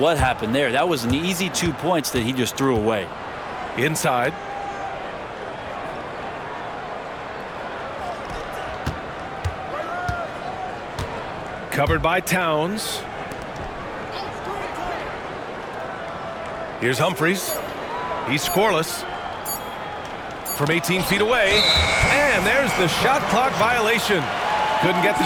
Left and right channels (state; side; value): identical; both; correlation 1.00